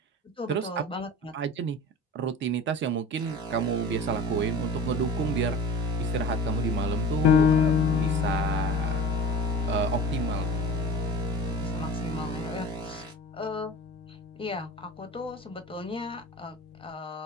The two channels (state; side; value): normal; both; correlation 0.36